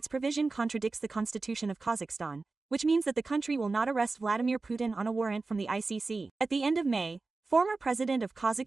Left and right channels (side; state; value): left; quieter; 3.8 dB